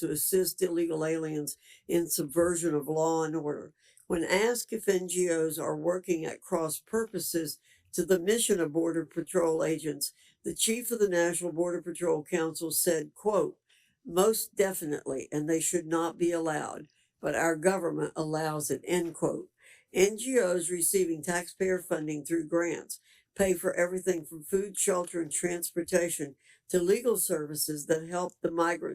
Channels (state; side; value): identical; both; correlation 1.00